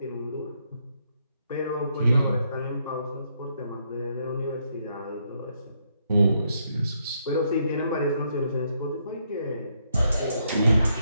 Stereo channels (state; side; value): inverted; both; correlation -0.76